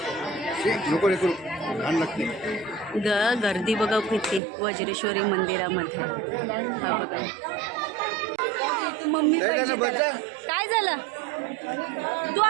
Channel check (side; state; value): left; drops out; at 4.4 s